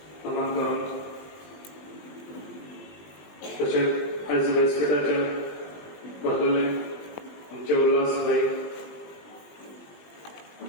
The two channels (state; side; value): late; right; 20 ms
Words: नमन करून तशेंच आयज व्यासपीठाचेर बसलेले आमचे उल्हास भाई